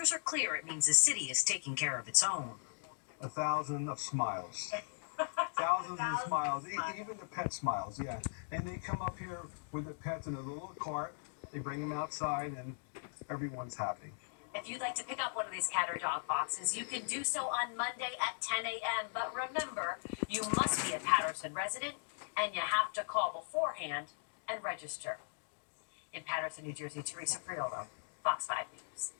are clear, it means the city is taking care of its own. 1,000 of smiles. Thousands of smiles, even the pet smiles, yeah. And they come up here with the pets in a little cart, they bring them outside, and everyone's happy. If you'd like to pick up one of these cat or dog boxes, you can do so on Monday at 10 a.m. But remember, you must be a Patterson resident, and you have to call beforehand and register. In Patterson, New Jersey, Teresa Priolo, Fox 5 News.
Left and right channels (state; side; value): silent; right; digital silence